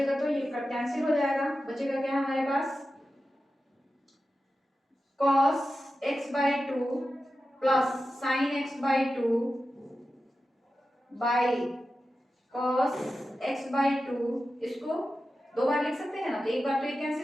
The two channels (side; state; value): both; normal; correlation 0.92